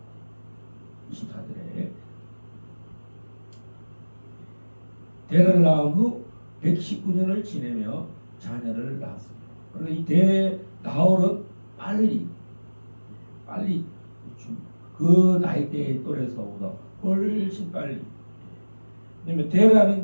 24절에 데라를 낳은 후 119년을 지내며 자녀를 낳았습니다. 그래서 이 나홀은 빨리 그 나이대의 또래에서보다 훨씬 빨리. 왜냐면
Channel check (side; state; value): both; inverted; correlation -1.00